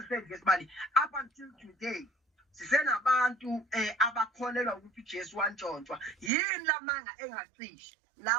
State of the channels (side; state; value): left; drops out; at 6.3 s